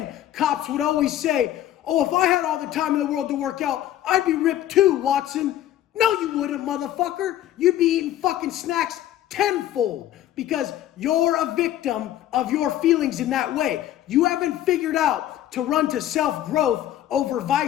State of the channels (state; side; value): quieter; right; 12.6 dB